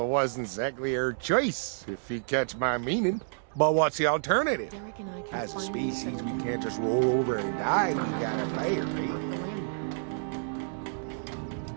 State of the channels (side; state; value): left; silent; digital silence